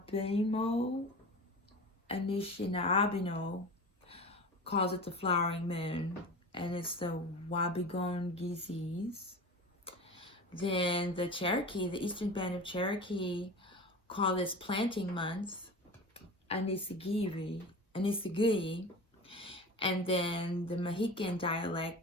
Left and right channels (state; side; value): normal; both; correlation 0.32